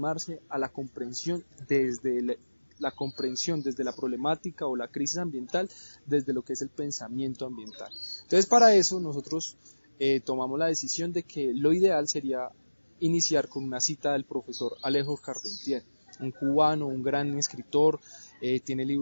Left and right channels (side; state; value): both; inverted; correlation -1.00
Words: a la comprensión desde la problemática o la crisis ambiental, desde lo que es el pensamiento ambiental. Entonces, para eso nosotros tomamos la decisión de que lo ideal sería iniciar con una cita del profesor Alejo Carpentier, un cubano, un gran escritor, tiene